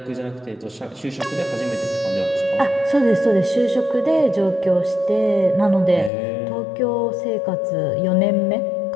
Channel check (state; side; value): drops out; right; at 6.1 s